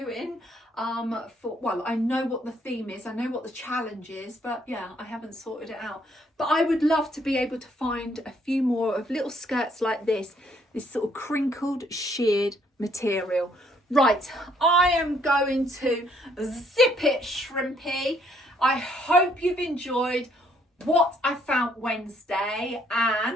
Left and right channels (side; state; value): both; normal; correlation 0.67